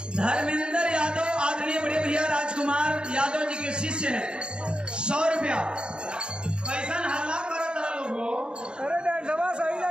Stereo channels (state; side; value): late; left; 0.052 ms